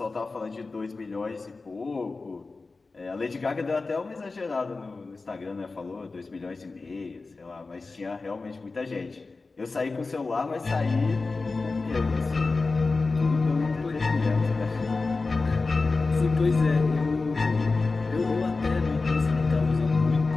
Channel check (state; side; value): quieter; right; 3.8 dB